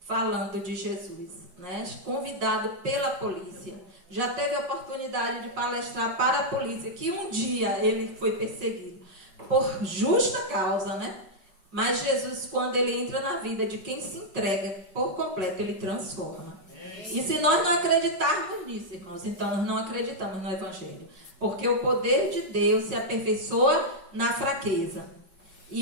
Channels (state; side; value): late; left; 5.1 ms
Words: falando de Jesus, né? Convidado pela polícia. Já teve a oportunidade de palestrar para a polícia, que um dia ele foi perseguido. Por justa causa, né? Mas Jesus, quando ele entra na vida de quem se entrega por completo, ele transforma. E se nós não acreditarmos nisso, irmãos, então nós não acreditamos no Evangelho. Porque o poder de Deus se aperfeiçoa na fraqueza.